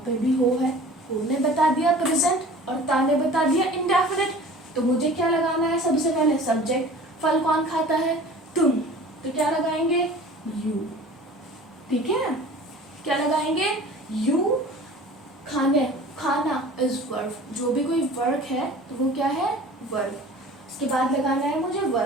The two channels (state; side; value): normal; both; correlation 0.43